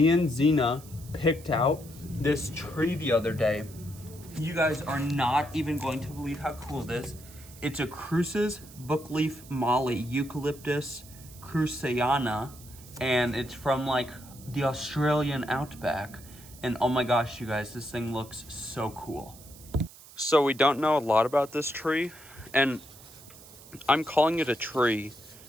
and Zena picked out this tree the other day. You guys are not even going to believe how cool it is. It's a Cruce's Bookleaf Mallee Eucalyptus cruceana, and it's from like the Australian outback. And oh my gosh, you guys, this thing looks so cool. So we don't know a lot about this tree, and I'm calling it a tree.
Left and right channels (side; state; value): right; noise; hiss, 20 dB below the sound